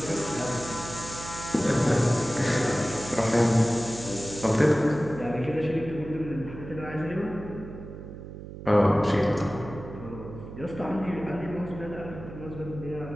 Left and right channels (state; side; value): noise; right; hum, 12 dB below the sound